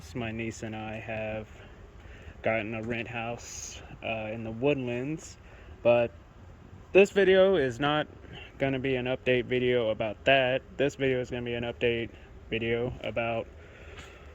My niece and I have gotten a rent house in the Woodlands, but this video is not going to be an update video about that. This video is going to be an update video about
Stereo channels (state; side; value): identical; both; correlation 1.00